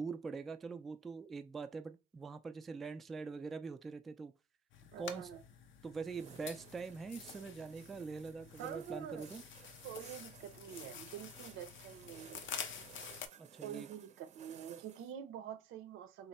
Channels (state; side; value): quieter; left; 3.3 dB